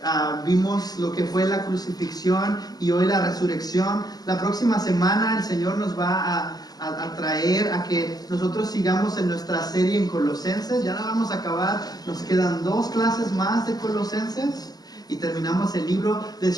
vimos lo que fue la crucifixión y hoy la resurrección. La próxima semana el Señor nos va a traer a que nosotros sigamos en nuestra serie en Colosenses. Ya la vamos a acabar, nos quedan 2 clases más de Colosenses y terminamos el libro.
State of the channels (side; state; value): right; late; 0.19 ms